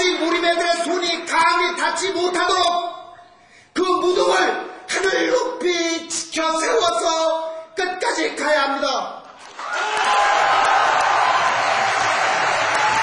몰입애들의 손이 감히 닿지 못하도록 그 무덤을 하늘 높이 지켜 세워서 끝까지 가야 합니다.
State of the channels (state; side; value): identical; both; correlation 1.00